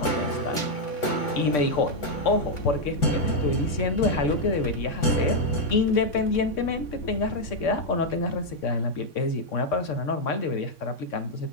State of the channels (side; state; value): right; late; 3.6 ms